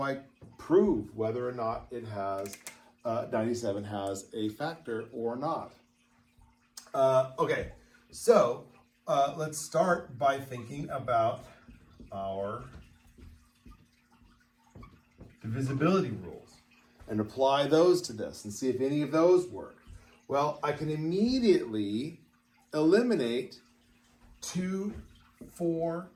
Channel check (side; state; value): both; identical; correlation 1.00